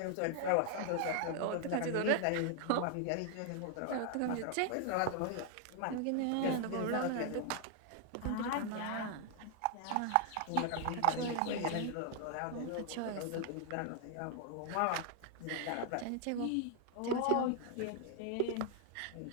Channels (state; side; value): different; both; correlation 0.00